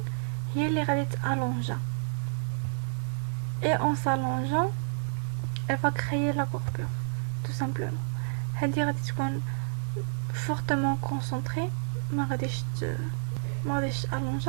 هي اللي غادي تالونجا et en s'allongeant elle va créer la courbure tout simplement. هذه غادي تكون fortement concentrée ما غاديش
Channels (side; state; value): left; silent; digital silence